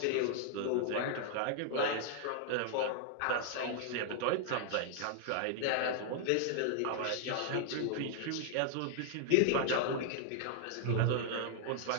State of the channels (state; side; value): different; both; correlation -0.01